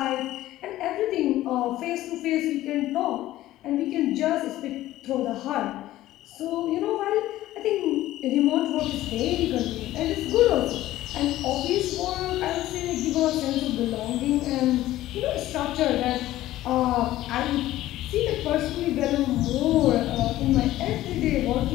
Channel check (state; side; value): quieter; right; 15.0 dB